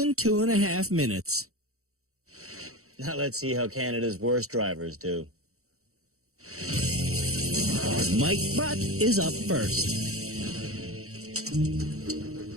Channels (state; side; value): late; left; 0.64 ms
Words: 2.5 minutes. Now let's see how Canada's worst drivers do. Mike Butt is up first.